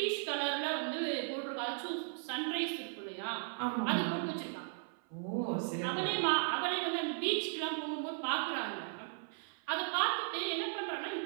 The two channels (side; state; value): left; silent; 53 dB below the other